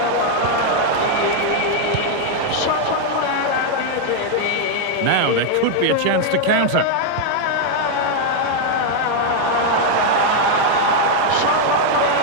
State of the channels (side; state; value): both; different; correlation 0.00